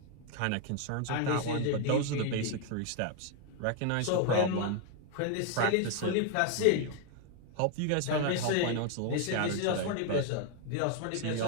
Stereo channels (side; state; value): both; different; correlation 0.01